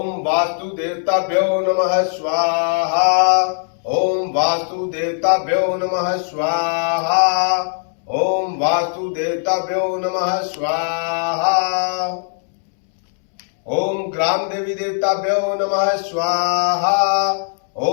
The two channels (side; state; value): right; silent; 67 dB below the other